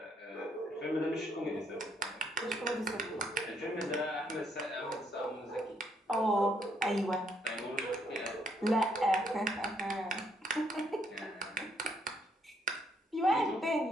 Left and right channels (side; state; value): both; normal; correlation 0.71